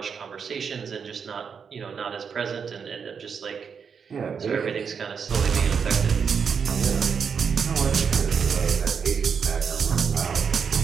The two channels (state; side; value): quieter; left; 6.4 dB